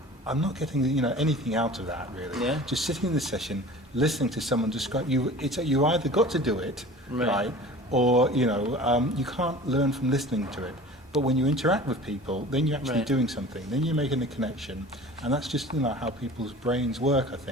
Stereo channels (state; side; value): normal; both; correlation 0.41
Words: I'm not getting anything out of that really. Yeah. Just sitting in the session, listening to someone describe you. You either got to do it, right, or you can't learn from listening to it. But when you interact with people, then you're actually Right. doing something. Then you're making a connection, and that's just how people's brains work. I